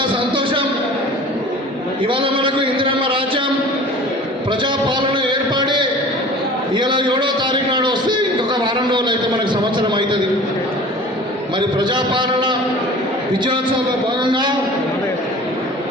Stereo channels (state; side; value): normal; both; correlation 0.42